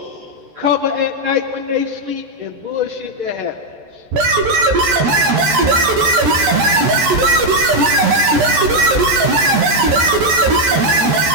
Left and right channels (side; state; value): left; late; 14 ms